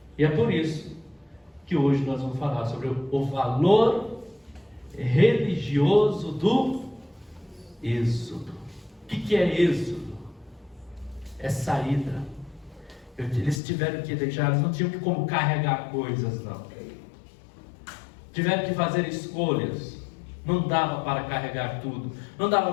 E é por isso que hoje nós vamos falar sobre o valor religioso do êxodo. O que é êxodo? É saída. Eles tiveram que deixar, eles não tinham como carregar coisas, não. Tiveram que fazer escolhas. Não dava para carregar tudo. Não dava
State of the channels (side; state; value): right; drops out; at 13.6 s